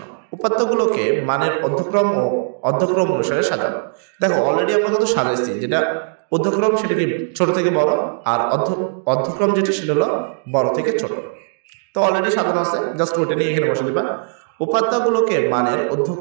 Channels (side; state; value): left; silent; 67 dB below the other